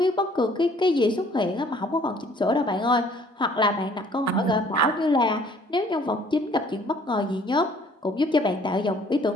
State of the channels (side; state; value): both; normal; correlation 0.58